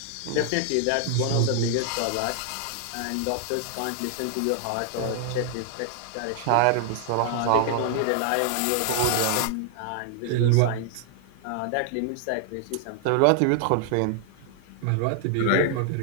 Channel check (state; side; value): different; both; correlation 0.00